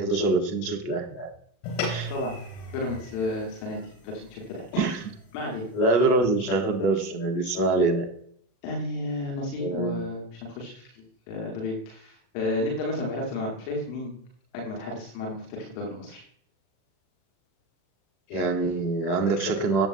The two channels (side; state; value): right; late; 36 ms